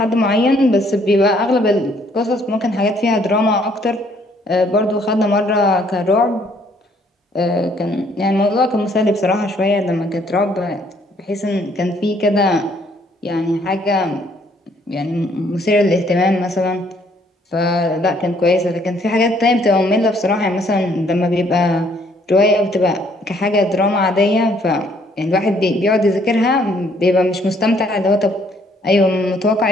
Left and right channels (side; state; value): both; normal; correlation 0.65